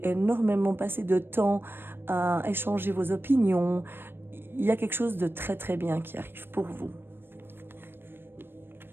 énormément passer de temps à échanger vos opinions. Il y a quelque chose de très très bien qui arrive pour vous.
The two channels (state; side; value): late; left; 0.10 ms